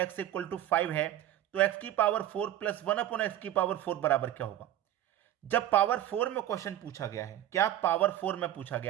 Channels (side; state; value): left; quieter; 12.5 dB